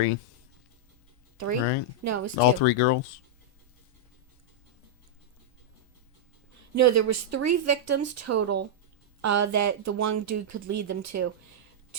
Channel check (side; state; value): both; normal; correlation -0.06